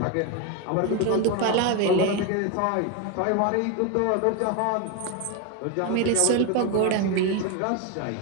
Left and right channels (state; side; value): different; both; correlation 0.02